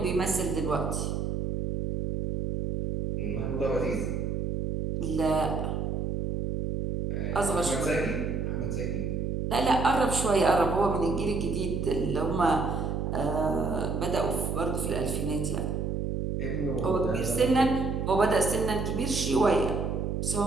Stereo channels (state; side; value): noise; right; hum, 1 dB below the sound